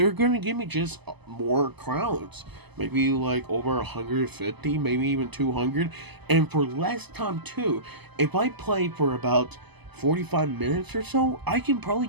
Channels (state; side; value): late; left; 0.99 ms